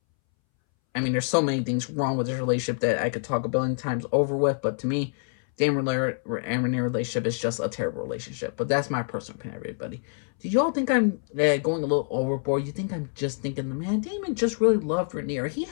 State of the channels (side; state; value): right; silent; 61 dB below the other